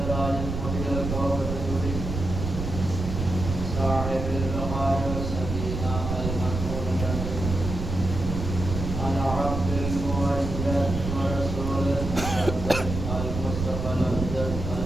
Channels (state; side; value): noise; right; rumble, 4 dB below the sound